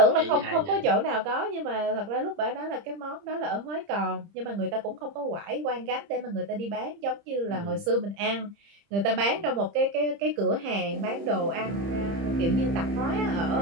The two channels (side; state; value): left; late; 30 ms